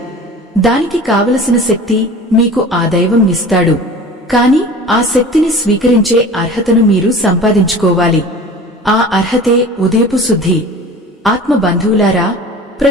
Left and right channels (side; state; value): both; normal; correlation 0.40